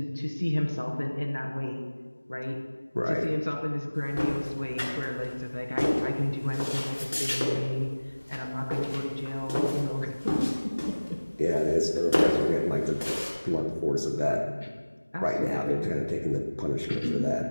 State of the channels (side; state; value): both; inverted; correlation -1.00